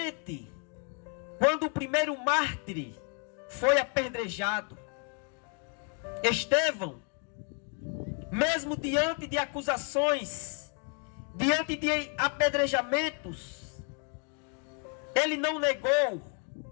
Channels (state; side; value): quieter; right; 37.5 dB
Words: quando o primeiro mártir foi apedrejado. Estevão, mesmo diante de acusações, diante de apedrejamentos, ele não negou